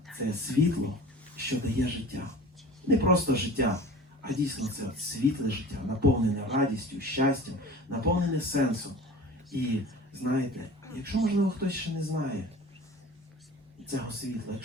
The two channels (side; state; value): both; normal; correlation 0.39